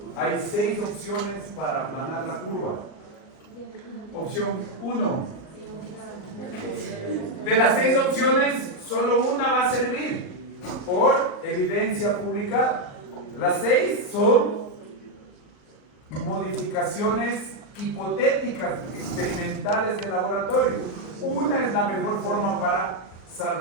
Hay 6 opciones para aplanar la curva. Opción 1. De las 6 opciones, solo una va a servir por evidencia publicada. Las 6 son modificaciones hipotéticas, experimentales de laboratorio. Una es la mejor forma para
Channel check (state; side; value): late; right; 39 ms